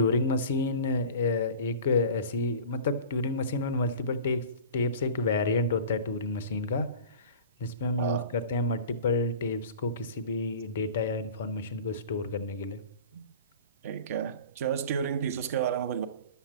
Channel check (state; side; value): inverted; both; correlation -0.39